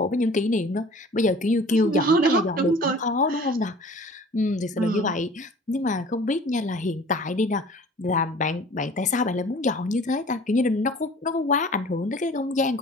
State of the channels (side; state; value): both; normal; correlation 0.47